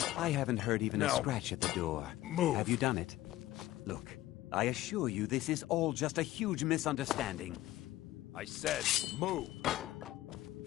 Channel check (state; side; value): quieter; right; 15.6 dB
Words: I haven't heard even a scratch at the door. Move. Have you done it? Look, I assure you this is all just a huge misunderstanding. I said, move.